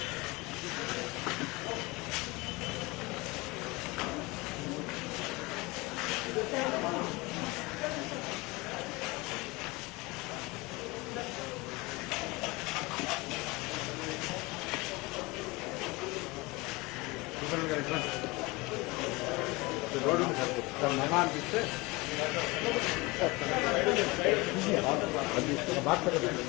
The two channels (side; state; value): right; quieter; 23.8 dB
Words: రోడ్డు సార్ మహా అనిపిస్తే